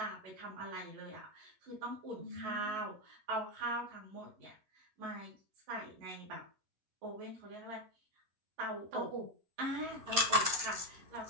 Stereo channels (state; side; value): late; left; 11 ms